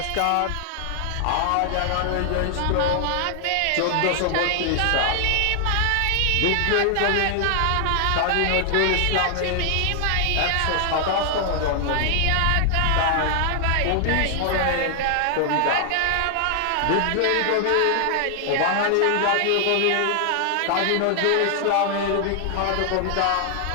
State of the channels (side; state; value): both; different; correlation 0.00